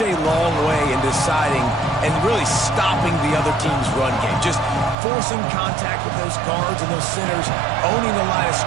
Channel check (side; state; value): left; drops out; at 5.0 s